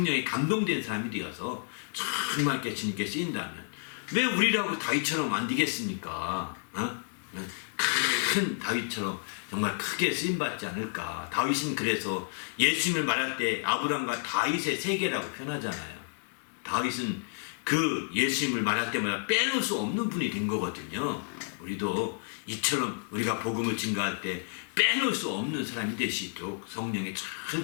감동된 사람이 되어서 정말 이렇게 주님께 쓰인다면 왜 우리라고 다윗처럼 안 되겠습니까? 큰 다윗처럼 정말 크게 쓰임받지 않을까. 다윗은 그래서 예수님을 말할 때 아브람과 다윗의 세계라고 표현하잖아요. 다윗은 그 예수님을 말할 때마다 빼놓을 수 없는 분이 된 거거든요. 우리도 이처럼 우리가 복음을 증거할 때 빼놓을 수 없는 사람이 될 수 있도록 성령에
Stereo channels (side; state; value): right; silent; 58 dB below the other